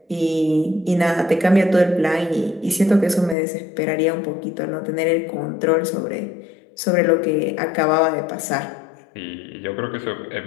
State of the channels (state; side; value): drops out; right; at 3.4 s